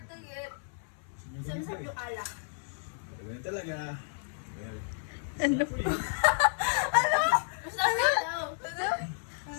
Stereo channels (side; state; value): right; silent; 57 dB below the other